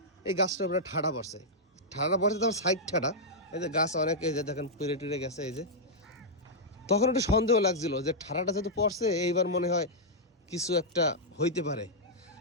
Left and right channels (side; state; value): both; normal; correlation -0.08